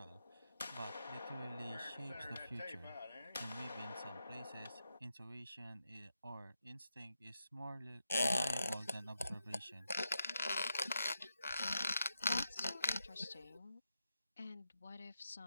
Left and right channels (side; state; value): both; inverted; correlation -0.86